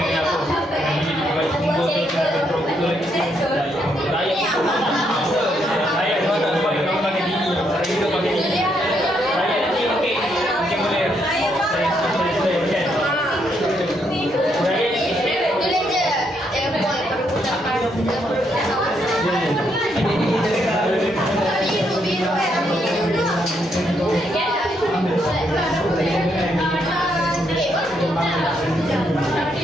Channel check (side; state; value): both; normal; correlation 0.75